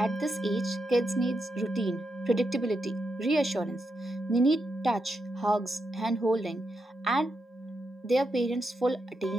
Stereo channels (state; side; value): normal; both; correlation 0.84